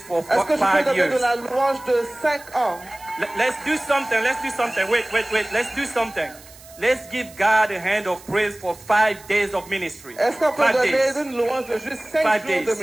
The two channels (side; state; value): right; noise; hiss, 21 dB below the sound